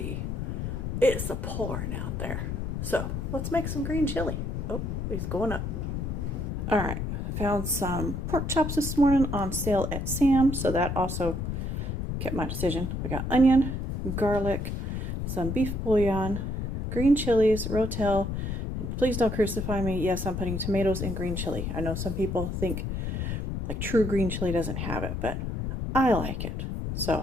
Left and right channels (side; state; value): left; noise; rumble, 3 dB below the sound